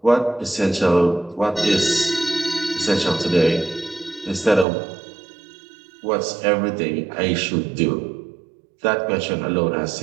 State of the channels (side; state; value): left; drops out; at 4.7 s